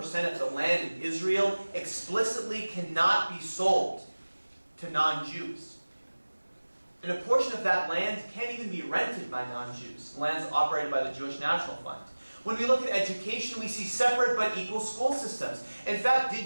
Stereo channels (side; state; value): both; inverted; correlation -1.00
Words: of the land in Israel explicitly cannot be sold to non-Jews. And a portion of that land can't even be rented by non-Jews. Land's operated by the Jewish National Fund. When we look at education, we see separate but equal school systems. In fact,